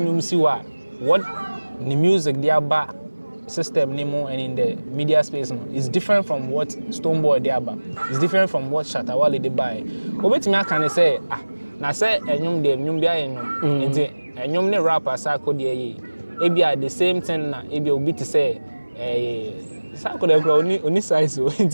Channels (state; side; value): inverted; both; correlation -1.00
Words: si wa what the music they aba system nemo and in the media space no is different from what Stonebwoy they aba. It's different from what Shatawale they buy. Obetimi aka say na say enyum de enyum bia enyum. Enti enyum ne rapper sa ko de yi. Ebi are the same thing na ebi obi to say sa ko de grow oni size o.